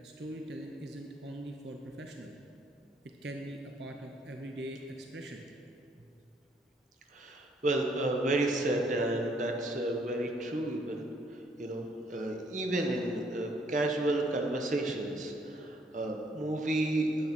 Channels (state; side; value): normal; both; correlation 0.67